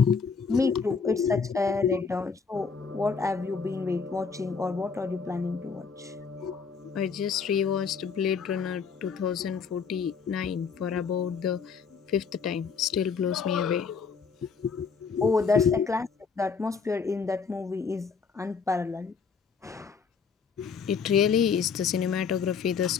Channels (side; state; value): right; quieter; 5.7 dB